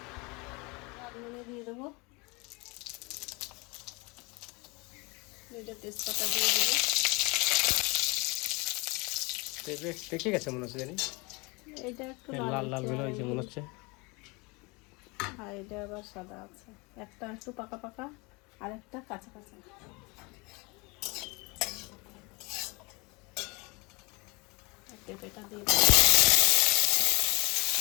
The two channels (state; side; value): quieter; right; 27.5 dB